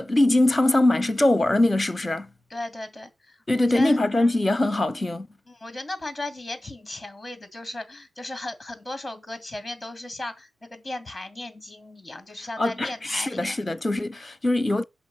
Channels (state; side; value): normal; both; correlation 0.96